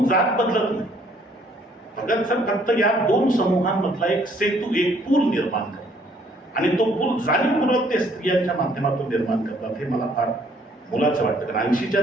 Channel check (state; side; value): normal; both; correlation 0.63